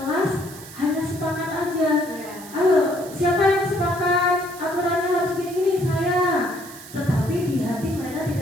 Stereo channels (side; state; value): right; noise; hiss, 16 dB below the sound